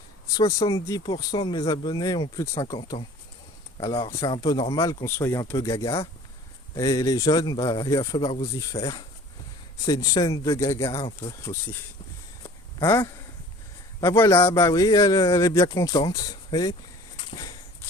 70% de mes abonnés ont plus de 50 ans. Alors c'est un peu normal qu'on soit un peu gaga. Et les jeunes, bah, il va falloir vous y faire. C'est une chaîne de gaga un peu aussi. Hein? Bah voilà, bah oui, elle est bien contente. Et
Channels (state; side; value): normal; both; correlation 0.46